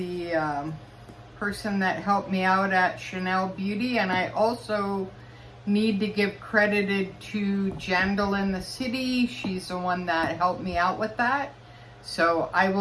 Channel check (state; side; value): identical; both; correlation 1.00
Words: person that helped me out at Chanel Beauty, and I also need to give credit to Jandal in the City. She's the one that helped me out with that. So I